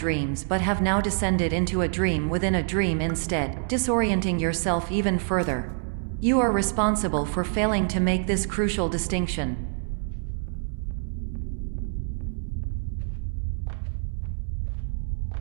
but have now descended into a dream within a dream instead, disorienting yourself even further. You are responsible for failing to make this crucial distinction.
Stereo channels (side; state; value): left; silent; 61 dB below the other